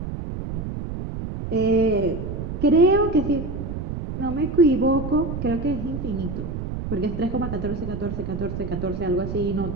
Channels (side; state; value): right; noise; rumble, 6 dB below the sound